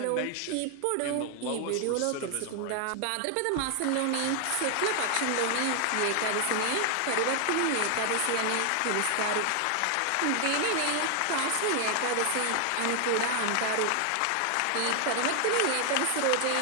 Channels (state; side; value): different; both; correlation 0.00